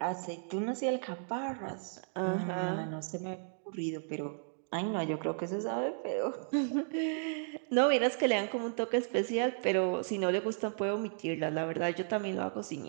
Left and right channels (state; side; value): silent; left; digital silence